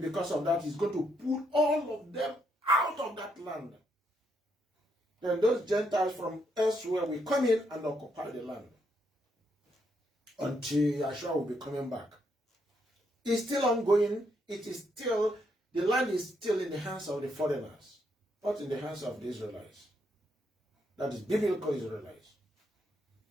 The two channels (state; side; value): normal; both; correlation 0.76